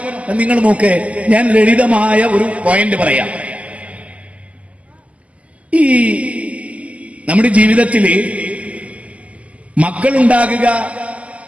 നിങ്ങൾ നോക്ക്, ഞാൻ ലളിതമായ ഒരു പോയിന്റ് പറയാം. ഈ നമ്മുടെ ജീവിതത്തില് മക്കളുണ്ടാകുക,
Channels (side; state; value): left; late; 0.068 ms